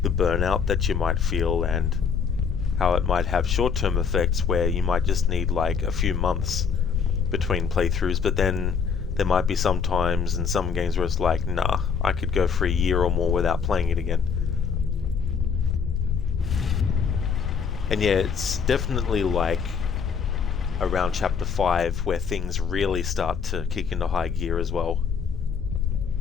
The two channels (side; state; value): right; quieter; 6.3 dB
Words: The burnout that you might feel and how it might have short-term effects where you might just need like a few months between playthroughs, but then there might be some times in some games where it's like, nah, I could go for a year or more without playing it again. And yeah, it's definitely like around chapter 5 where things really start to kick into high gear as well.